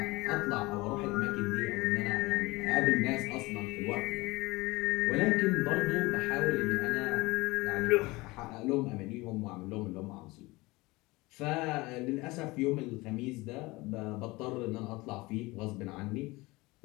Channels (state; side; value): quieter; right; 22.2 dB